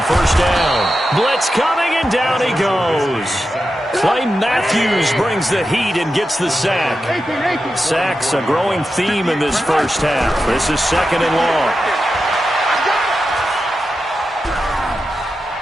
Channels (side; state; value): both; normal; correlation 0.90